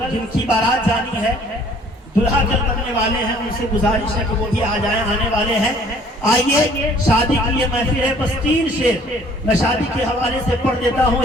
جن کی بارات جانی ہے، دلہا کل بننے والے ہیں، ان سے گزارش ہے کہ وہ بھی آ جائیں، آنے والے ہیں. آئیے شادی کی یہ محفل ہے، بس 3 شعر میں شادی کے حوالے سے پڑھ دیتا ہوں.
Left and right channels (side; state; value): both; normal; correlation 0.57